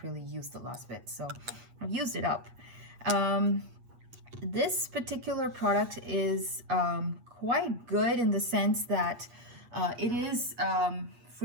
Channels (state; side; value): late; left; 8.4 ms